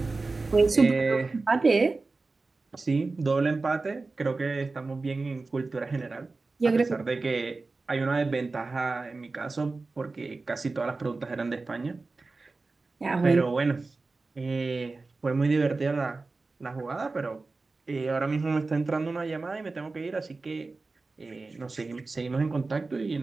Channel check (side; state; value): left; quieter; 3.7 dB